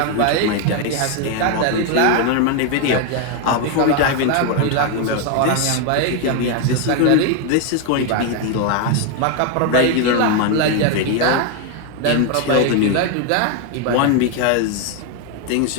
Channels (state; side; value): different; both; correlation 0.01